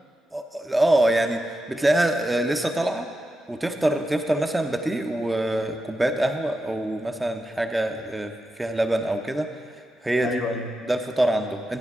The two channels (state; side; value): normal; both; correlation 0.88